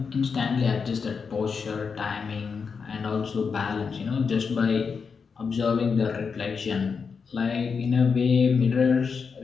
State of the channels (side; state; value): right; quieter; 5.6 dB